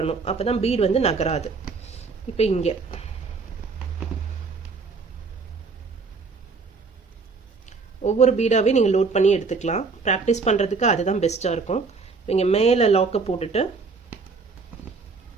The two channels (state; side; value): quieter; left; 4.6 dB